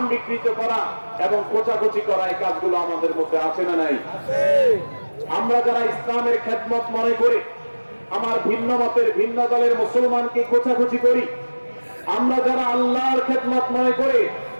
বিকৃত করা এবং কোচাকুচি করা, এই কাজগুলো আমাদের মধ্যে আছে না নাই? আমরা যারা ইসলামের খেদমত মনে করে আমার ভিন্ন মতের, ভিন্ন দলের মুসলমানকে কোচাকুচি করি, আমরা যারা আল্লাহর খেদমত মনে করে,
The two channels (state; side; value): inverted; both; correlation -1.00